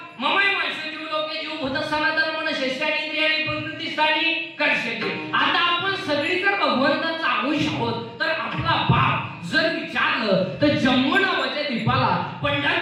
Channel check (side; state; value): both; identical; correlation 1.00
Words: ममय माणसं जीव लोके जीव भूत सनातन मन शेष्यानी इंद्रियानी प्रकृती स्थानी कर्षते. आता आपण सगळी जर भगवंताचा अंश आहोत तर आपला बाप जर विचारलं तर जम्मू नावाच्या द्वीपाला